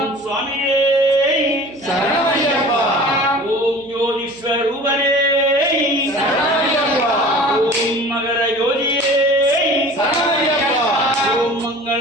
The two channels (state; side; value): noise; right; hum, 26 dB below the sound